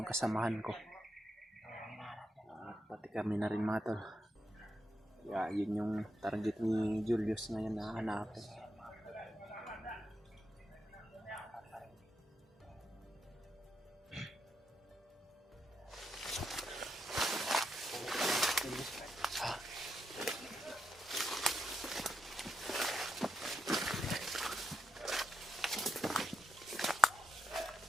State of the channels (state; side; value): normal; both; correlation 0.83